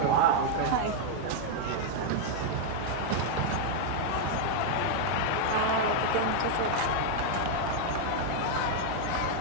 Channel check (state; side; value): different; both; correlation 0.00